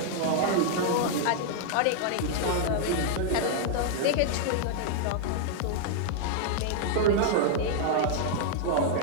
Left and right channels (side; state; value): both; different; correlation -0.01